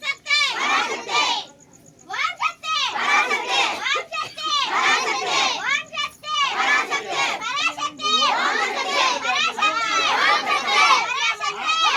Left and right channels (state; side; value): identical; both; correlation 1.00